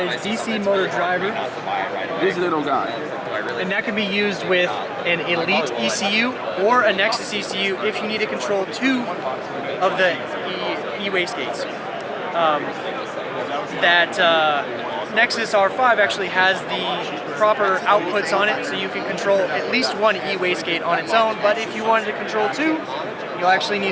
DC motor driver. This little guy. And that can be used with an Elite ECU or a Nexus ECU if you need to control 2 of the e-wastegates. Nexus R5 actually has the proper outputs on it, so you can control at least 1 e-wastegate on its own, but if you wanted to control 2, you'll actually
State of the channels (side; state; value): both; identical; correlation 1.00